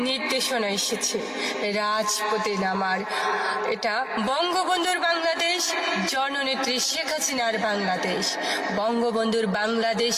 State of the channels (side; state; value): both; identical; correlation 1.00